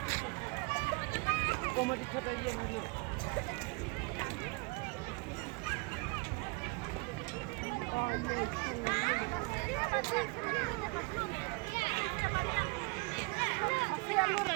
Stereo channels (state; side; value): quieter; left; 29.2 dB